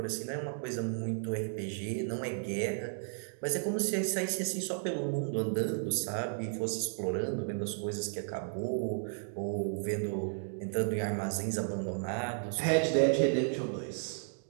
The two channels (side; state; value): left; silent; digital silence